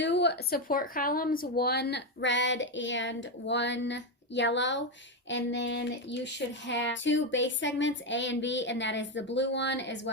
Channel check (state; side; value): normal; both; correlation 0.09